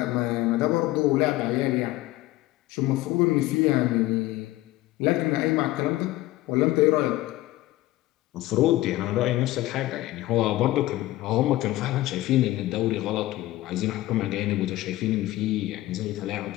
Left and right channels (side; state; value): right; quieter; 16.9 dB